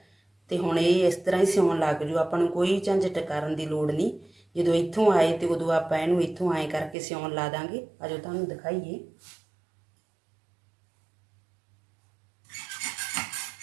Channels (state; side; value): drops out; left; at 7.0 s